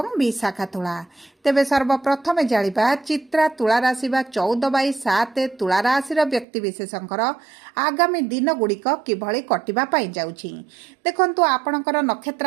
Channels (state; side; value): drops out; left; at 6.5 s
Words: विशाखा तुला। तेबे सर्वप्रथमे जानिबा चित्रा तुला राशि बा 14/7 तुला राशि व्यक्ति विशेषकर आगामी दिन गुड़िक किभଳି कटिबा पाई जाउछि। देखंतु आपणकर